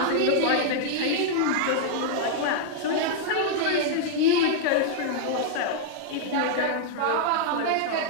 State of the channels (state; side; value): different; both; correlation -0.01